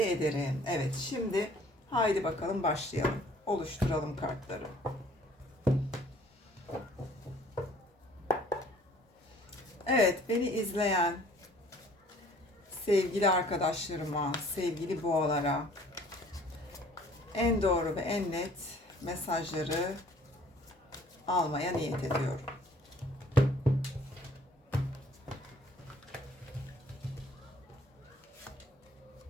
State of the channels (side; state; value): both; normal; correlation 0.55